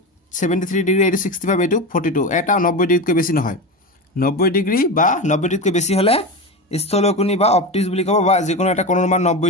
73 ডিগ্ৰী, এইটো 65, এইটো 42, এটা 90 ডিগ্ৰীতকৈ বেছি নহয়। 90 ডিগ্ৰী বা 90 ডিগ্ৰীতকৈ বেছি হ'লে স্থলকোণী বা অবটিউচ বুলি ক'ব, বা যিকোনো এটা কোণৰ মান 90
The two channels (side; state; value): both; normal; correlation 0.21